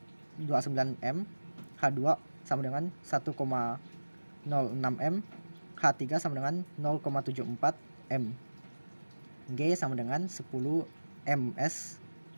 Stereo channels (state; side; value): inverted; both; correlation -1.00